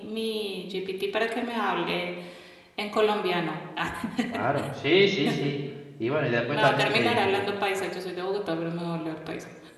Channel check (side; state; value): both; identical; correlation 1.00